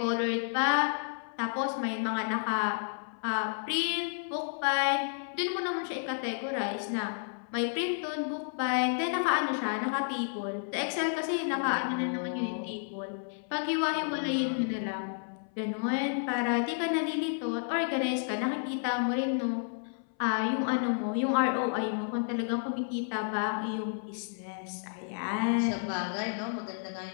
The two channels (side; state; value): right; silent; 57 dB below the other